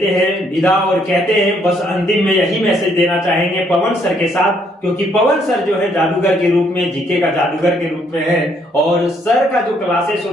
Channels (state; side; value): normal; both; correlation 0.69